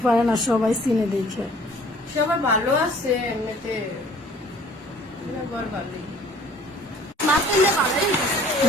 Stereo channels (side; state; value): both; normal; correlation 0.54